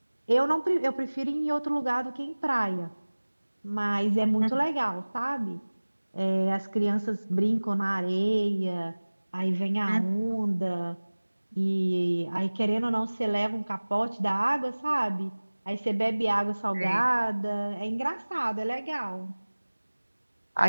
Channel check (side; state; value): both; inverted; correlation -1.00